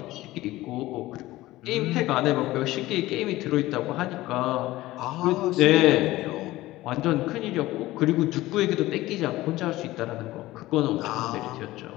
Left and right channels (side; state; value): right; quieter; 17.4 dB